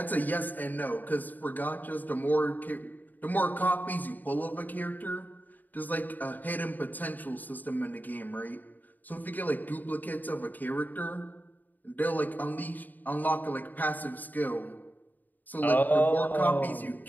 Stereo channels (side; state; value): right; late; 0.085 ms